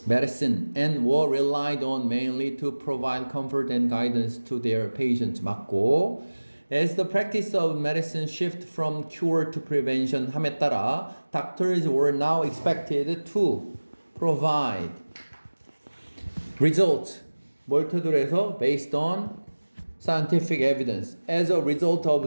medicine and were relied on mainly to provide comfort and guidance to their patients. 맞고, as the practice of medicine shift from cure to prevention 함에 따라 doctors were now expected to provide results 뭘 토대로 해서 based on scientific evidence. As a result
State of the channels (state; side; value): inverted; both; correlation -1.00